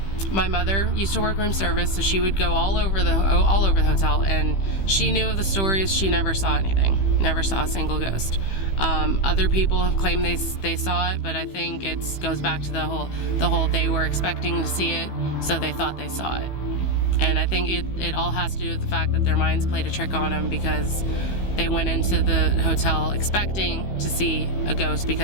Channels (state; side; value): late; right; 15 ms